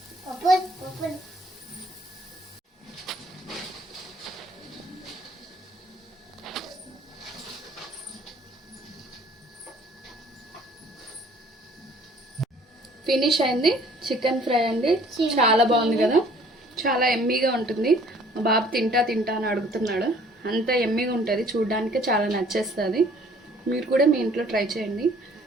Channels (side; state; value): both; normal; correlation 0.56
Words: ఫినిష్ అయింది. చికెన్ ఫ్రై అండి, చాలా బాగుంది కదా, చాలా ఎమ్మీగా ఉంటుంది. మా బాబు తింటా అని అడుగుతున్నాడు, అంత ఎమ్మీగా ఉంటుంది, చూడడానికి చాలా నచ్చేస్తుంది. మీరు కూడా మీ ఇంట్లో ట్రై చేయండి.